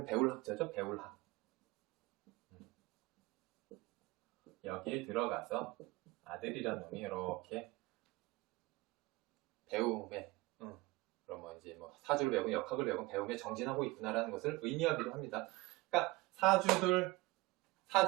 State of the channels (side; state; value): left; quieter; 21.2 dB